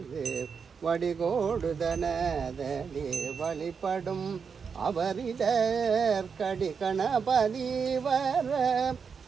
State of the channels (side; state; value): left; quieter; 6.1 dB